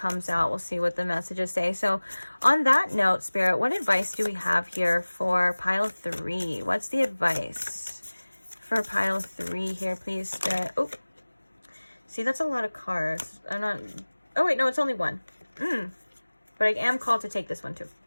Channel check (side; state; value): both; inverted; correlation -1.00